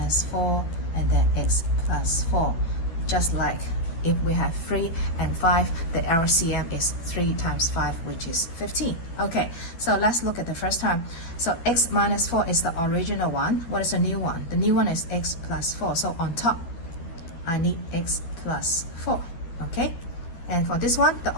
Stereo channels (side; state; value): right; late; 11 ms